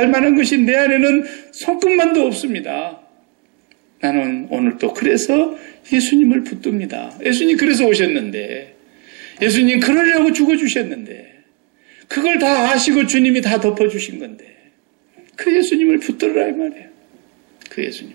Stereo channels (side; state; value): left; quieter; 28.9 dB